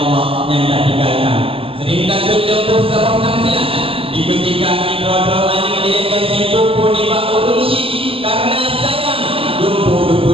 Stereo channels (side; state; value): left; late; 0.27 ms